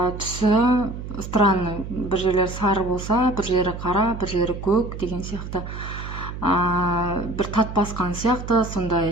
түсі странный. Бір жерлері сары болса, бір жері қара, бір жері көк деген сияқты. Бір тат басқан сияқты,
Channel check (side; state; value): right; noise; hum, 9 dB below the sound